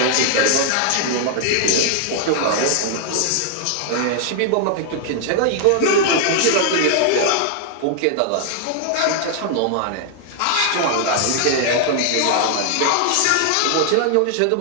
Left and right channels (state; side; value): different; both; correlation -0.01